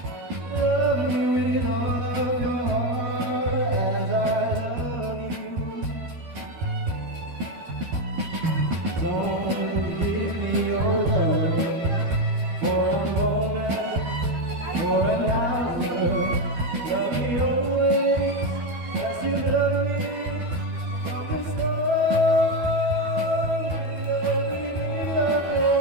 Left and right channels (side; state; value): left; late; 12 ms